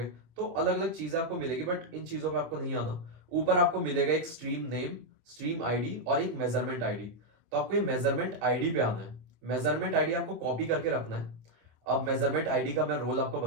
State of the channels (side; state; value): left; late; 26 ms